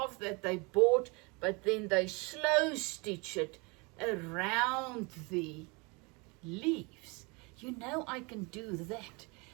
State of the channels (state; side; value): quieter; left; 28.8 dB